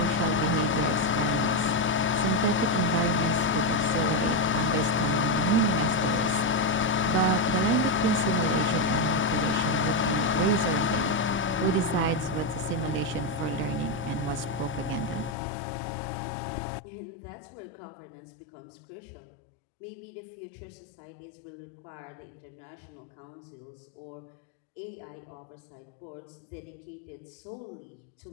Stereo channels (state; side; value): drops out; right; at 15.4 s